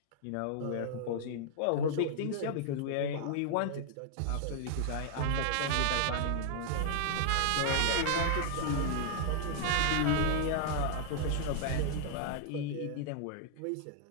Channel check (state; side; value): different; both; correlation 0.00